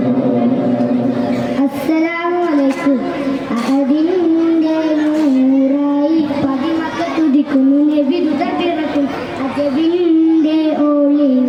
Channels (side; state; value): both; identical; correlation 1.00